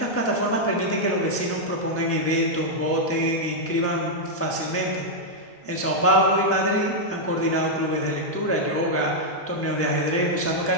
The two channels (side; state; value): both; normal; correlation -0.04